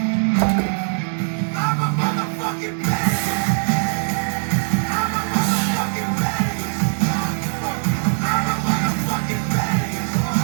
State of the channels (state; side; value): silent; left; 65 dB below the other